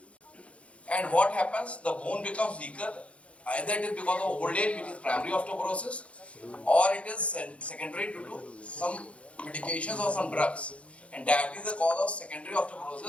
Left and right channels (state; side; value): late; right; 0.062 ms